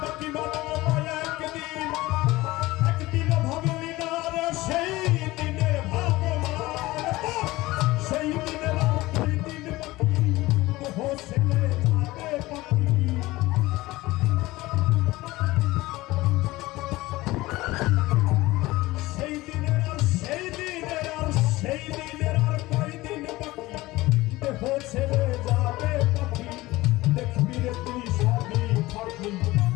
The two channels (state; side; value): quieter; right; 19.2 dB